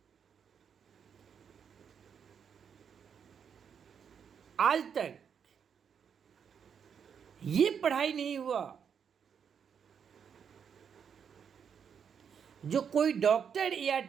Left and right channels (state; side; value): quieter; left; 7.3 dB